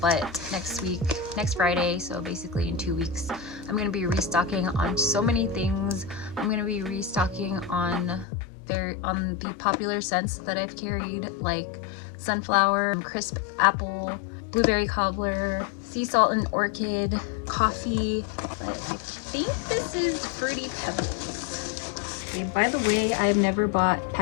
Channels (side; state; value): right; drops out; at 8.2 s